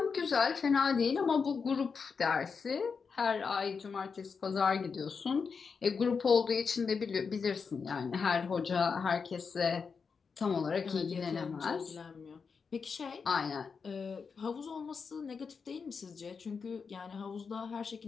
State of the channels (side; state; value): right; quieter; 5.5 dB